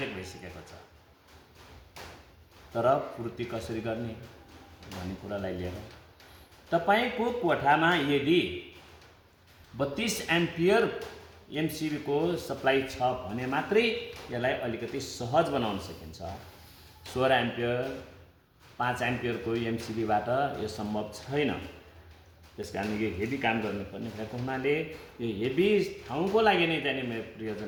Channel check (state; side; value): identical; both; correlation 1.00